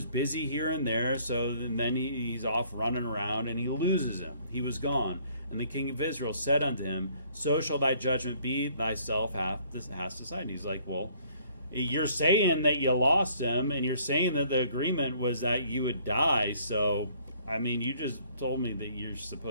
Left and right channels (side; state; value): both; inverted; correlation -0.61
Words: busy here and there, so then he's off running around, and he loses him. He was gone. And the king of Israel said unto him, so shall thy judgment be, thyself hast decided. He's like, well, you're saying that you lost him, and you're saying that the agreement was that you would die, so, I mean, you just told me that you're